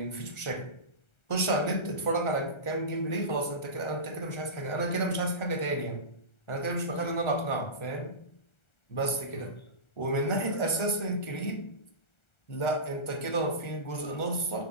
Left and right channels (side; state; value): right; late; 1.3 ms